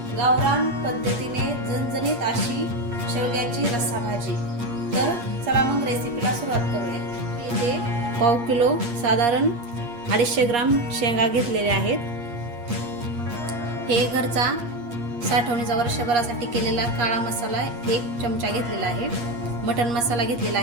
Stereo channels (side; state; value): left; late; 8.4 ms